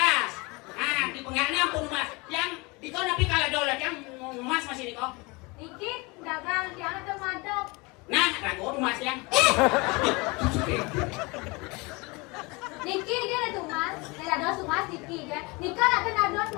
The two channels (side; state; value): right; quieter; 26.4 dB